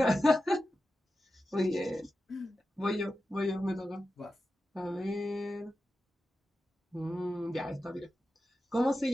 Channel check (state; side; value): normal; both; correlation 0.92